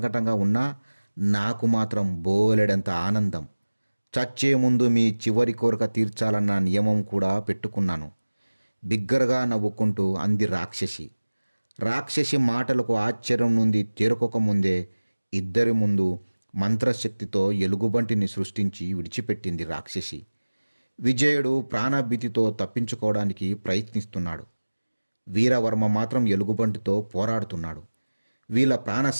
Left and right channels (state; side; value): inverted; both; correlation -1.00